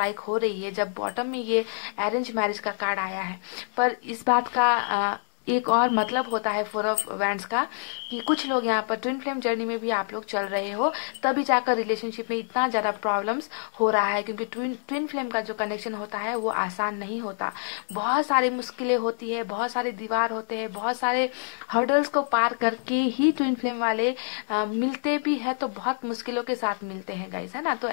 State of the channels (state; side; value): silent; right; digital silence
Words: हो रही है जब बॉटम में ये अरेंज मैरिज का कार्ड आया है। पर इस बात का एक और मतलब होता है फोर ऑफ वैंड्स का, कि कुछ लोग यहाँ पर ट्विन फ्लेम जर्नी में भी आप लोग चल रहे हो, तभी जाकर रिलेशनशिप में इतना ज़्यादा प्रॉब्लम्स हो रहा है, क्योंकि ट्विन फ्लेम का जो कनेक्शन होता है वो आसान नहीं होता। बहुत सारी मुश्किलें होती है, बहुत सारे दीवार होते हैं, बहुत सारे हर्डल्स को पार करके ही ट्विन फ्लेम वाले मिलते भी है, तो बहुत मुश्किलों के साथ मिलते हैं गाइस, है ना। तो